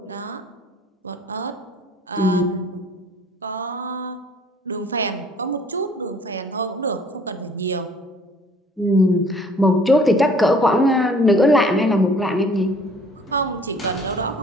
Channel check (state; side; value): normal; both; correlation 0.55